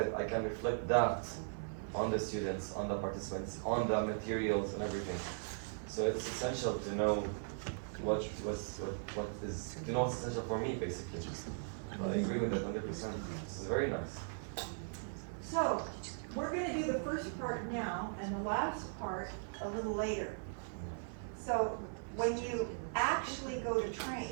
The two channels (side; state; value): left; silent; 52 dB below the other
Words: I can reflect that on the students, on the participants, on the materials and everything. So it's essential to know what is essential for me, basically. I agree with that 100%. This is very nice. So, we're going to do the first part now and the last part a little later. So, when you actually go to